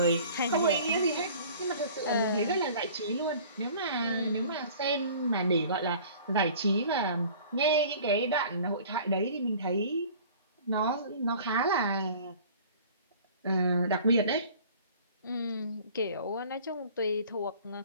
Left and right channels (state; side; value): inverted; both; correlation -0.47